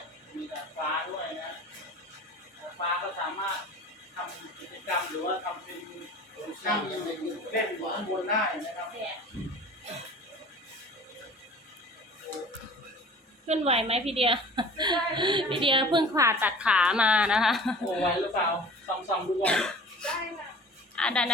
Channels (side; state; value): both; normal; correlation 0.43